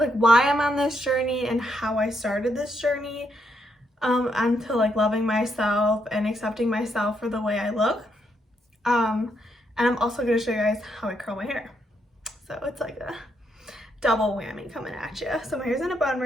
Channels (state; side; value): normal; both; correlation 0.77